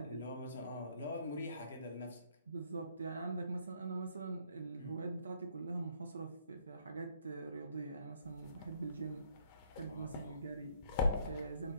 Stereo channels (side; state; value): both; inverted; correlation -0.65